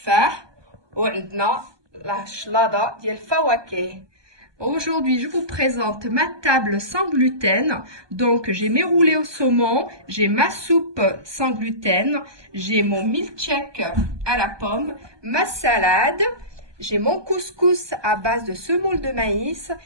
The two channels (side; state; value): left; late; 1.2 ms